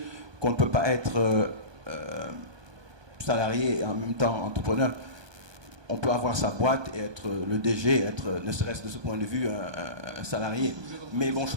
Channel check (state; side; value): late; left; 1.2 ms